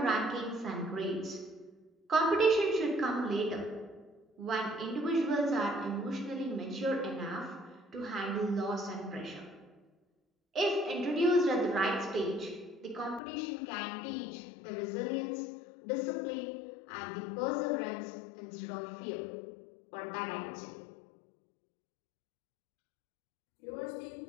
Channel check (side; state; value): right; drops out; at 13.2 s